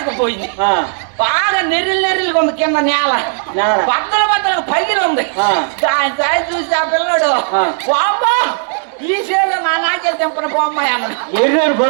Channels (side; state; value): left; silent; digital silence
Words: బాగా నెర్రిగా ఉంది కింద నేల, బద్దలు పగిలి ఉంది. దాని చూసి ఆ పిల్లడు బాబా ఈ చేలో నా నాకెళ్ళి తెంపన పోమ్మాయి అన్నాడు.